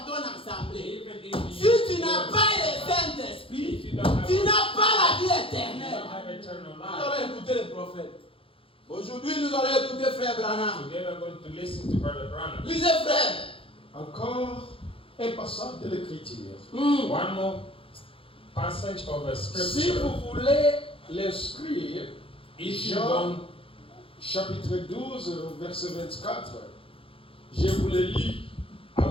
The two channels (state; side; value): late; right; 0.26 ms